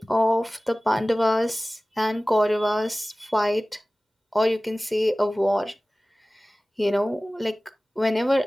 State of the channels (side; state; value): both; normal; correlation 0.98